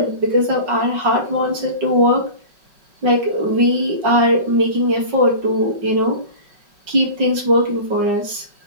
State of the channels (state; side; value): late; left; 5.3 ms